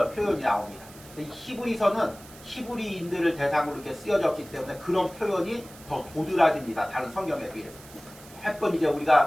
표현이 나옵니다. 이 히브리서는 히브리인들을 대상으로 이렇게 쓰여졌기 때문에 그런 표현이 더 도드라집니다. 다른 성경에 비해서. 몇 번 이제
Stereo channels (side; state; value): right; noise; hiss, 20 dB below the sound